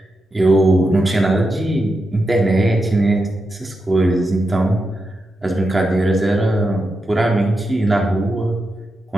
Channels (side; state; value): both; normal; correlation 0.87